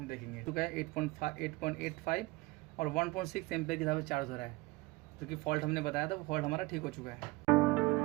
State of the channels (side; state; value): left; quieter; 22.6 dB